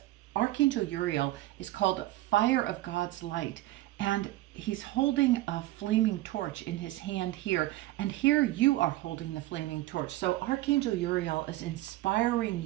Archangel Uriel is called Fire of God's Light. And he's holding a flaming torch in his hand here. And here you are holding the flaming torch. So Archangel Uriel is inspiring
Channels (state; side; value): quieter; left; 16.7 dB